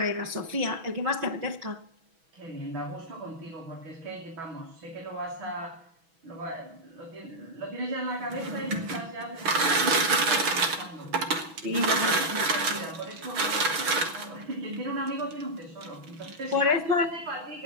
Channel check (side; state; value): left; late; 6.1 ms